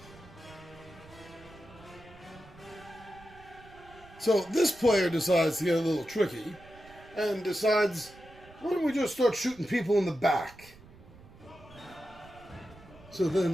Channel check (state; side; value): noise; right; rumble, 22 dB below the sound